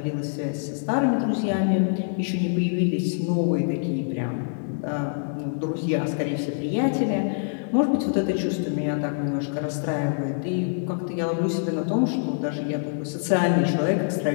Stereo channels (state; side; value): silent; right; digital silence